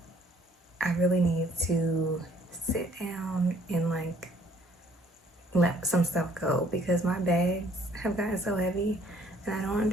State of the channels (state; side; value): normal; both; correlation 0.61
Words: I really need to sit down and like let some stuff go because my bags have gotten so heavy and I don't